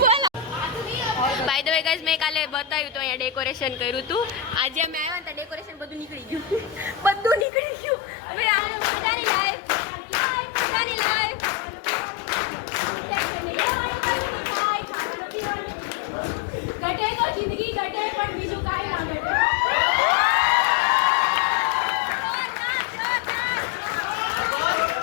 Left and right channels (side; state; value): right; drops out; at 7.5 s